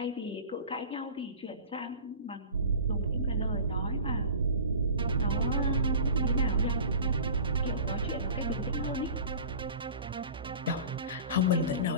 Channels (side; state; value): both; inverted; correlation -0.38